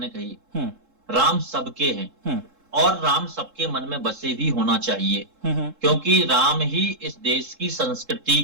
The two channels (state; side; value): late; left; 3.7 ms